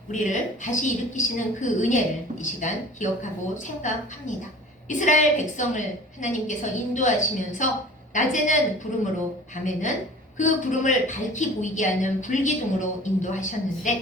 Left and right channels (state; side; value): normal; both; correlation 0.44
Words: 우리를 다시 일으키시는 그 은혜를 이 시간 기억하고 생각합니다. 이스라엘 백성을 하나님께서 인도하시면서 낮에는 구름으로 밤에는 그 구름을 밝히 보이게 하는 불기둥으로